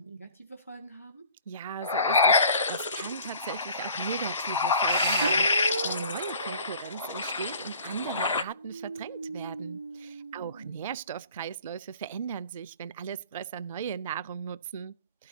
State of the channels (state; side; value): inverted; both; correlation -0.49